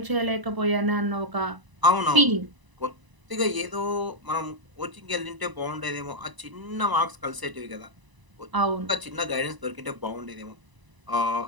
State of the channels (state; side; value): late; left; 1.0 ms